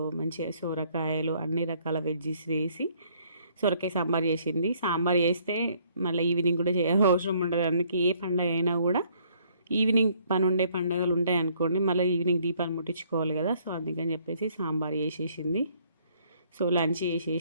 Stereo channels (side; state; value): both; inverted; correlation -0.64